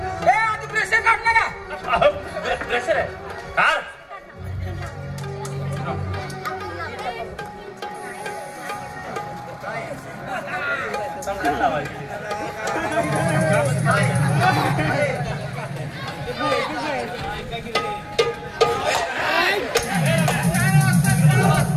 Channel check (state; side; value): identical; both; correlation 1.00